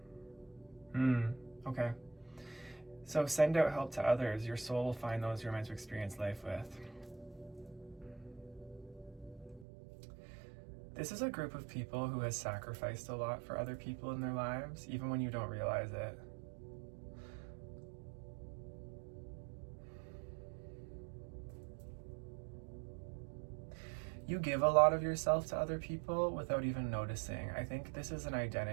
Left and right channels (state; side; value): drops out; left; at 9.7 s